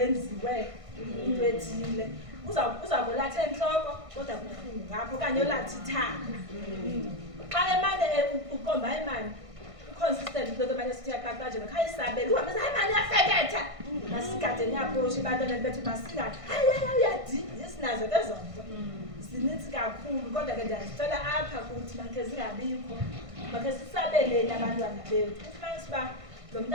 into ethile. Uzakulatha enhloko kodwa kubuhlungu ngapho kanye olathi ithanga. Xa emane ukomba imani consistent into manje sithi yaqaqaje ekhaya isabela uhambe hayi mani uyafeketha masigade niyaphosha abantwana bethu masingathi hayi uyadi sinazo lezo nto zininzi kakhulu kodwa ke ndiyazicela apha kuthi makhe zingabikho makhe sisabeleni abantwana bethu ufumanise uba lo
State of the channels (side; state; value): left; late; 1.5 ms